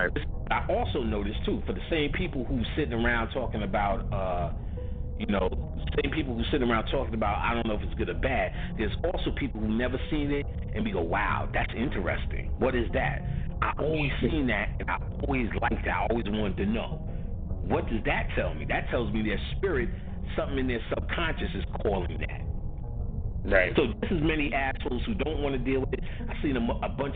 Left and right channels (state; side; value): identical; both; correlation 1.00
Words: I also noticed, too, for the same people who sitting around talking about, same people who sitting around talking about, I don't know if it's good or bad, there's also people who never seen it and we go, wow, that's interesting. What is that? I always seen that, and I always liked that. I always wanted to know. What does that tell me? That tells me their spirit, something in their subconscious is calling that. Right. So this is many assholes who don't want to deal with it. I've seen a